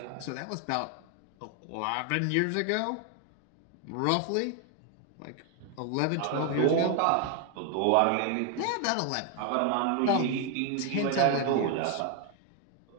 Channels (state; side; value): different; both; correlation 0.00